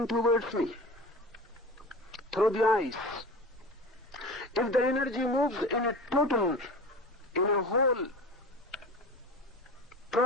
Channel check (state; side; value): normal; both; correlation 0.34